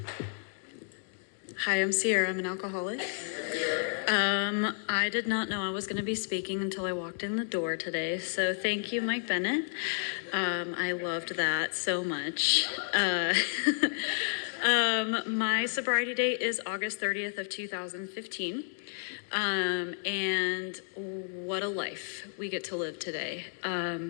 Hi, I'm Siera. I'm an alcoholic. I did not know I was going to be speaking until I walked in the door today, so thank you, Mike Bennett. I loved that so much. My sobriety date is August 30th of 2015, and what a life we get to live today.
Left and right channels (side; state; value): right; silent; 57 dB below the other